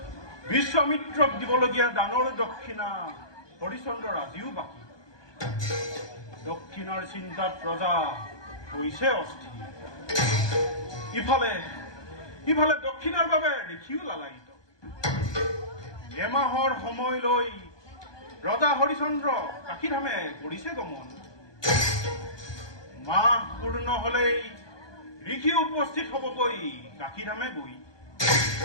বিশ্বামিত্ৰক দিবলগীয়া দানৰ দক্ষিণা হৰিশ্চন্দ্ৰৰ আজিও বাকী। দক্ষিণাৰ চিন্তাত ৰজা হৈছে অস্থিৰ। ইফালে দক্ষিণাৰ বাবে দেখিও লালায়িত। এমাহৰ সময় লৈ ৰজা হৰিশ্চন্দ্ৰ কাশীধামে কৰিছে গমন। মাহ পূৰ্ণ হলেই ঋষি উপস্থিত হবগৈ কাশীধামে গৈ।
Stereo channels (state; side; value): late; right; 1.2 ms